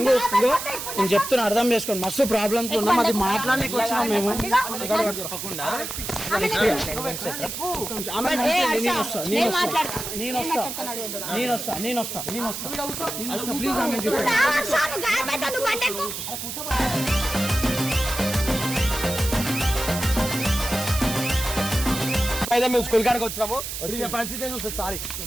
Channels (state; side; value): noise; right; hiss, 6 dB below the sound